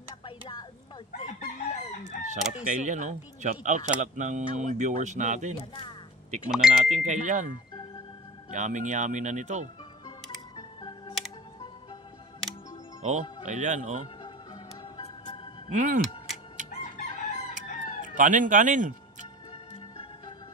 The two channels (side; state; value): both; normal; correlation 0.34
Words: Sarap kailan, oh. Shout out sa lahat ng viewers natin. Tikman na natin kailan. Yummy na nito. Oh, kailan, oh. Kanin.